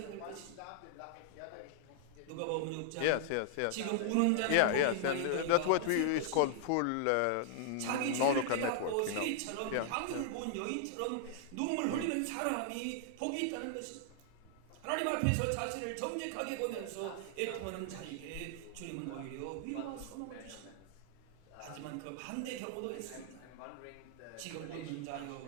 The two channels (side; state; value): both; different; correlation -0.01